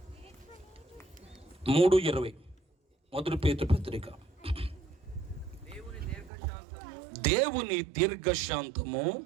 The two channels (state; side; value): drops out; left; at 6.3 s